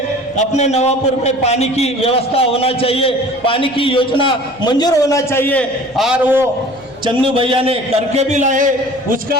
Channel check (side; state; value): right; noise; hum, 28 dB below the sound